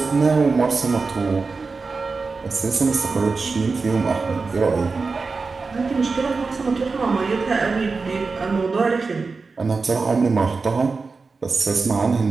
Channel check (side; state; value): left; quieter; 4.3 dB